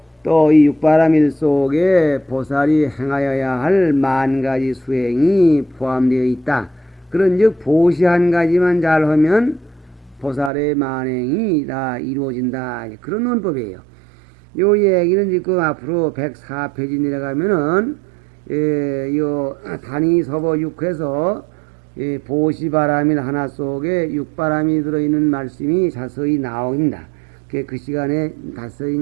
또 이 육바라밀 속에 보살이 행하여야 할 만 가지 수행이 포함되어 있다. 그런즉 보시 한 가지만 잘하면 보살의 만행이 다 이루어진다, 그런 논법이에요. 요 얘기는 지금 앞으로 104페이지 내려가면은 요 단위 서보 6에서 보시바라밀 하나 속에 육바람이 들어있는 말씀이 자세히 나옵니다. 그 시간에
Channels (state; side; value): drops out; left; at 10.5 s